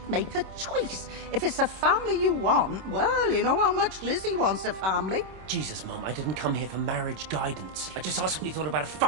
make a choice. If it's a family you want, well, you know how much Lizzie wants a family. Jesus, Mum, I didn't come here for marriage guidance. I just asked what you thought about a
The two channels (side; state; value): left; late; 26 ms